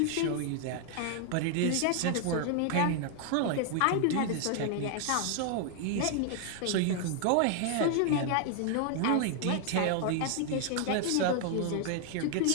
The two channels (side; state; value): both; different; correlation 0.00